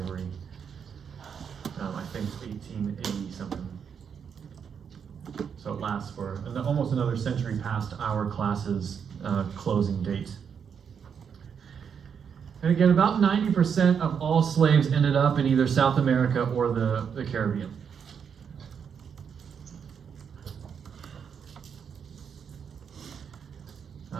I think it's 1880 something. So it lasts for almost another century past our class's closing date. And again, about 90% of all slaves ended up in either South America or the Caribbean.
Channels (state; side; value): quieter; left; 7.1 dB